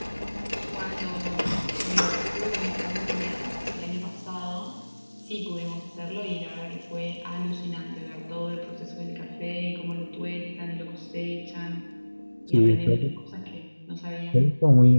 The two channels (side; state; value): both; inverted; correlation -1.00